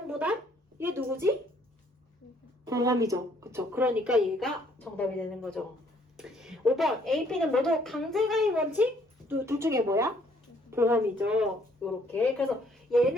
부담? 얘 누구지? 보험이죠. 그쵸. 그러니까 얘가 정답이 되는 거죠. 5번 AP는 모두 강제가입 원칙? 둘 중에 뭐야? 보험이죠. 요렇게. 그래서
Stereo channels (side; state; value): both; normal; correlation 0.64